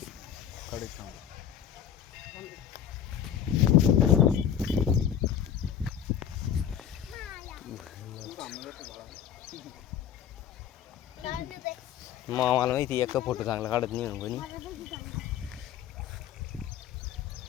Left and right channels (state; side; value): quieter; right; 9.4 dB